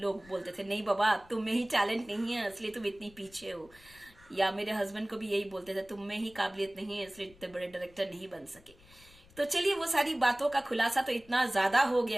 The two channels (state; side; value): noise; left; rumble, 25 dB below the sound